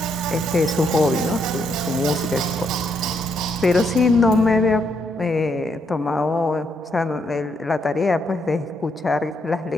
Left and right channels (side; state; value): both; normal; correlation 0.76